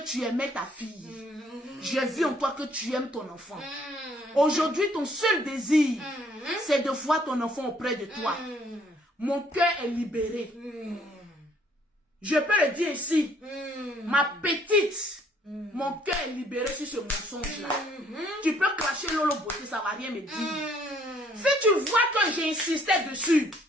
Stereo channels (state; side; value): normal; both; correlation 0.63